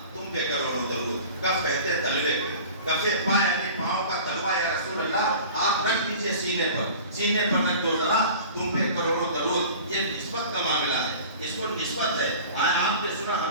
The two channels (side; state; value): both; inverted; correlation -0.41